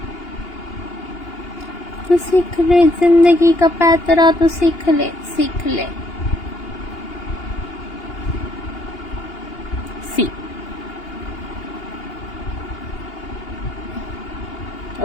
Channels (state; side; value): late; right; 2.8 ms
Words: तू सीख ले जिंदगी का पैतरा, तू सीख ले, सीख ले. सी.